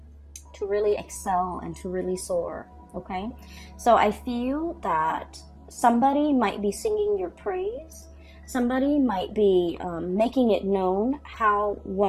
to really excel and to really soar, okay? So I feel that somebody might be singing your praise. Somebody might be making it known how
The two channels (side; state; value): both; identical; correlation 1.00